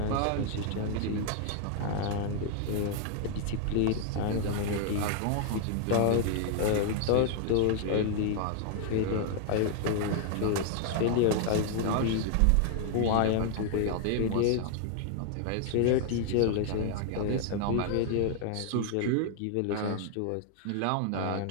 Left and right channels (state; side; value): different; both; correlation -0.01